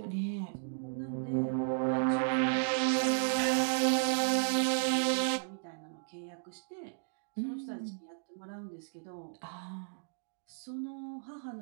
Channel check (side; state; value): left; silent; digital silence